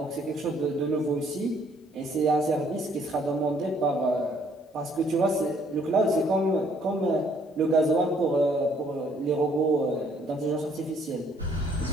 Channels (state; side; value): normal; both; correlation 0.63